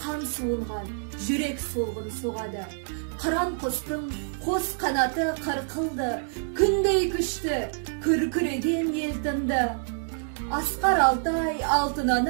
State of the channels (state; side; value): silent; left; digital silence